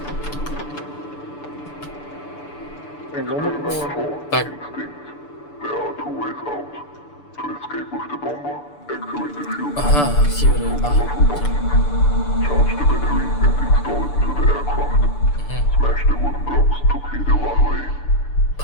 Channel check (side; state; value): right; late; 6.9 ms